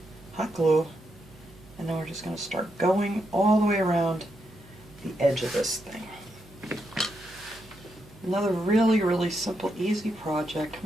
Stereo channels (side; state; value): right; noise; hum, 23 dB below the sound